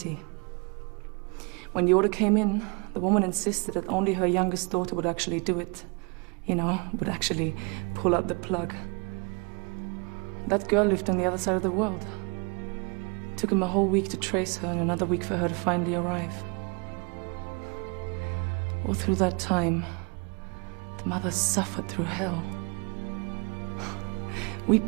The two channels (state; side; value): quieter; left; 32.6 dB